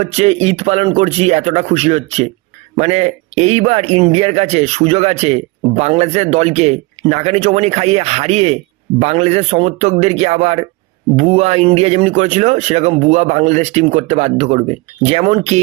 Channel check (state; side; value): quieter; left; 23.3 dB